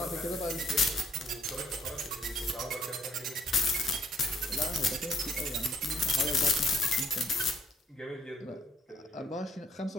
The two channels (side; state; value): both; normal; correlation 0.68